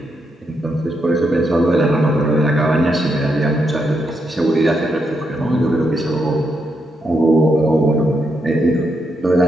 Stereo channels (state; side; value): normal; both; correlation 0.81